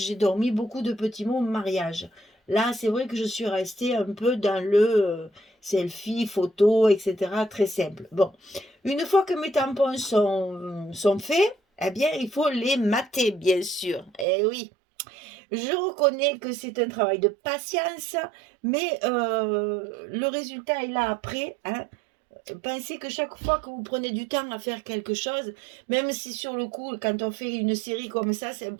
dormi beaucoup de petits mots mariage. Là, c'est vrai que je suis restée un peu dans le selfie, photo, etc. Très simple. Bon, une fois que mes tampons sont faits, eh bien, il faut les mater, bien sûr. Eh oui, je reconnais que c'est un travail de patience, mais le résultat est là après. Hein. Pensez que chaque fois que vous prenez du temps à faire quelque chose, même si sur le coup, quand on fait une série comme ça, c'est un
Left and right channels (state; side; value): drops out; left; at 14.2 s